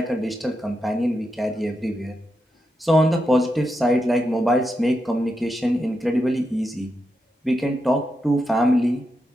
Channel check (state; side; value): normal; both; correlation 0.86